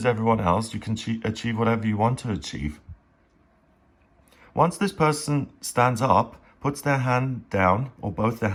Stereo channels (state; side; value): identical; both; correlation 1.00